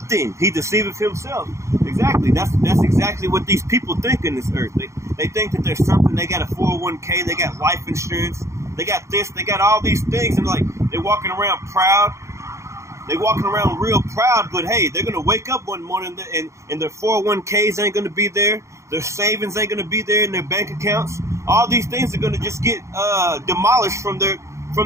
he deceiveth himself. Exactly. That's exactly what these people think in this earth. They think that there's something. They got a 401k. They got life insurance. They got this. They got all these things. And like, they're walking around proud. They're walking around real proud. But hey, they're going to wake up one morning and their 401ks ain't going to be there. Their savings ain't going to be there in their bank accounts. All these things are going to just get demolished from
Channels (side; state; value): left; late; 0.14 ms